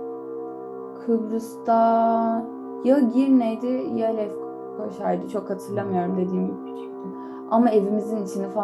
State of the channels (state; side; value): identical; both; correlation 1.00